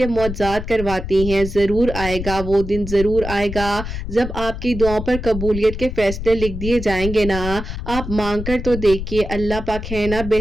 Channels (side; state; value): left; noise; rumble, 7 dB below the sound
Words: معجزات کرواتی ہیں۔ ضرور آئے گا وہ دن، ضرور آئے گا جب آپ کی دعاؤں پر قبولیت کے فیصلے لکھ دیے جائیں گے نا۔ آپ مانگ کر تو دیکھیے، اللہ پاک ہے نا